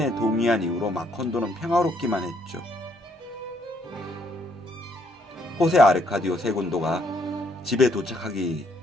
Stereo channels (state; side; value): normal; both; correlation 0.70